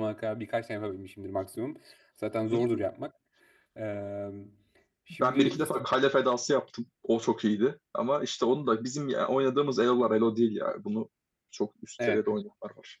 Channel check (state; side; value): identical; both; correlation 1.00